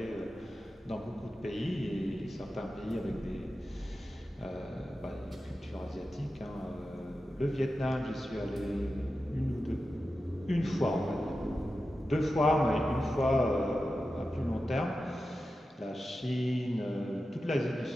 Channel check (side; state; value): both; normal; correlation 0.92